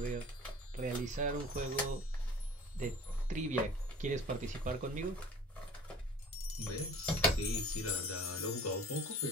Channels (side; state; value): both; normal; correlation 0.45